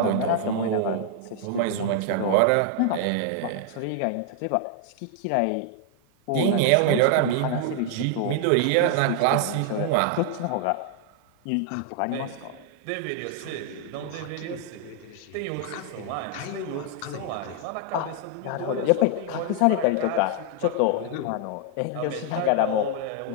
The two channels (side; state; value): both; different; correlation 0.00